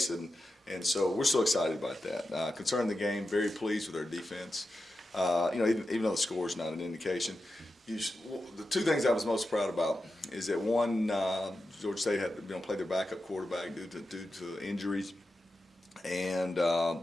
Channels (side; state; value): both; normal; correlation 0.90